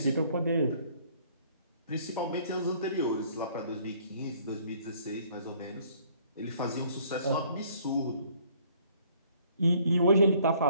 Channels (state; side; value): inverted; both; correlation -0.60